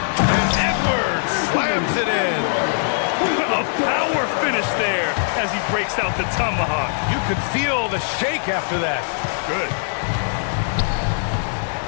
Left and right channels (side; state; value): right; silent; 57 dB below the other